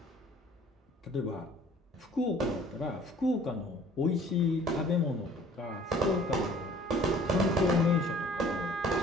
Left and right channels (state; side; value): normal; both; correlation 0.53